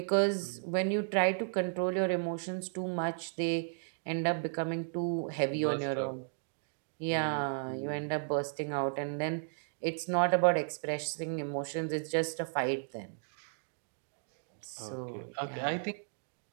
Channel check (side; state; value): left; silent; digital silence